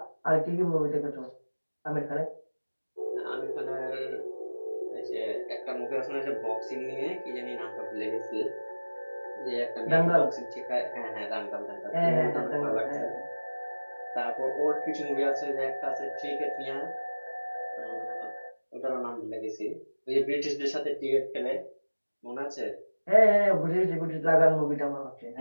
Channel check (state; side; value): inverted; both; correlation -1.00